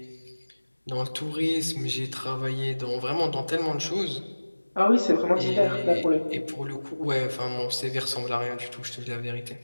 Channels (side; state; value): both; inverted; correlation -1.00